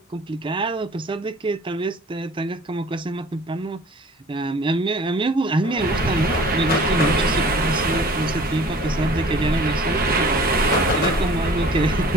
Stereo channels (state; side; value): normal; both; correlation 0.48